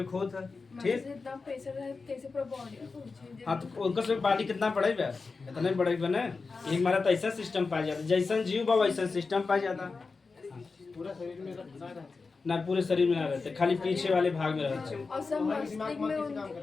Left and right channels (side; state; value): right; quieter; 4.3 dB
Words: खोत है ठीक इतना प्रेशर है कैसे पूरा बॉडी हाँ तो उनका सब पानी कितना बढ़ेगा इतना ही बढ़ेगा ना एक मारा तो ऐसा सिस्टम पाया जाता जैसा जीव बा वैसा सिस्टम पाया जाता पूरा शरीर में रहता ना पूरे शरीर में ना रहते खाली पीछे वाले भाग में रहते और सब मस्तिष्क